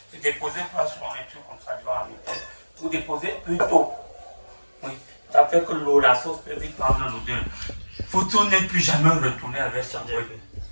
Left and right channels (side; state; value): both; inverted; correlation -1.00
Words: J'ai déposé pas sur un truc comme ça devant la maison. Vous déposez plus tôt. Oui, ça fait que la sauce peut vite prendre l'odeur. Photo n'est plus jamais retourné avec sa brette.